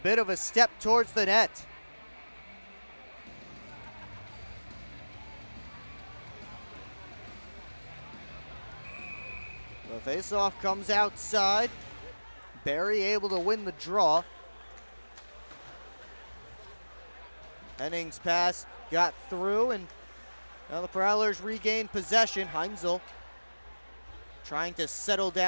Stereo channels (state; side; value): inverted; both; correlation -1.00